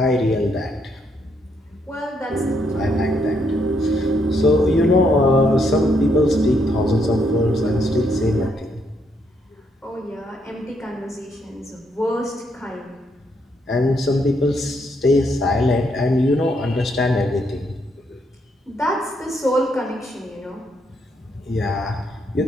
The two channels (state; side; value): normal; both; correlation 0.75